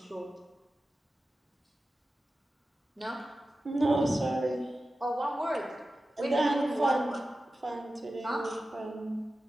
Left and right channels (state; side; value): normal; both; correlation 0.94